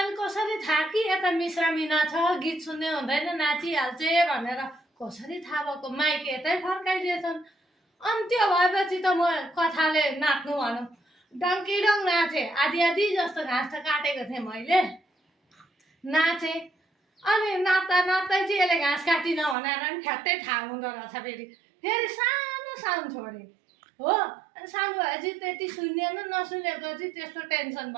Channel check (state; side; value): drops out; left; at 19.6 s